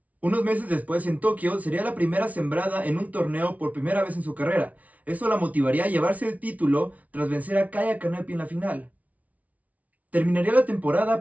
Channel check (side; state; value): left; late; 0.070 ms